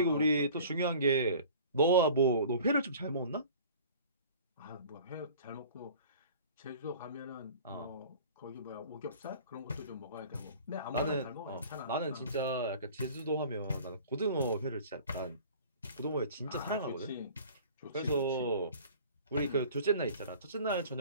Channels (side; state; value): both; inverted; correlation -0.45